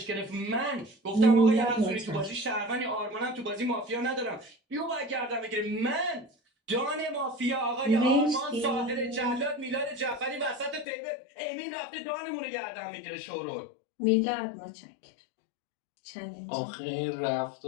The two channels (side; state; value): right; drops out; at 10.9 s